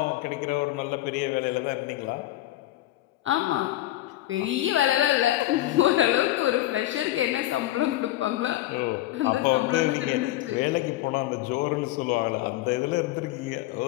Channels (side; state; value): right; quieter; 15.3 dB